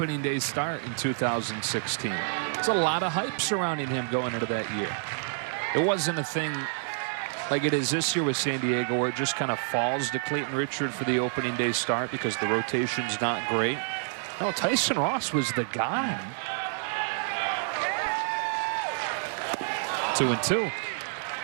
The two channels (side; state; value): left; silent; 59 dB below the other